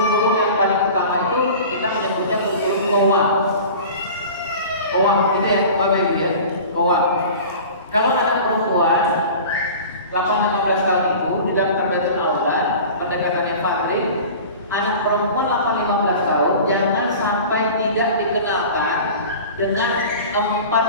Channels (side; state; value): both; inverted; correlation -0.38